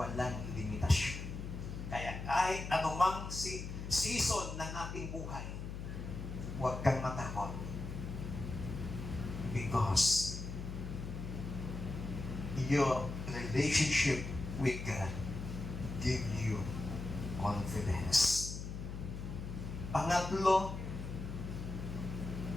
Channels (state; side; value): noise; left; hum, 7 dB below the sound